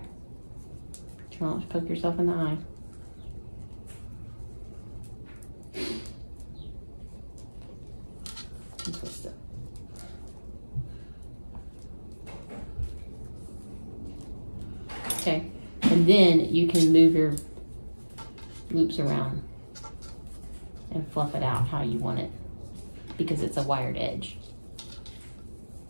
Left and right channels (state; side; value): inverted; both; correlation -1.00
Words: Try not to poke yourself in the eye. And twist it. Okay. And then you can move your loops around and fluff it out how you want it, because it's a wired edge.